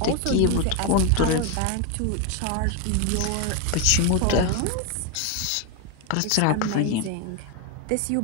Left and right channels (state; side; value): different; both; correlation 0.01